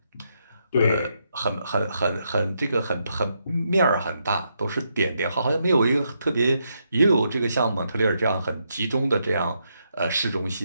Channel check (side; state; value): both; inverted; correlation -0.80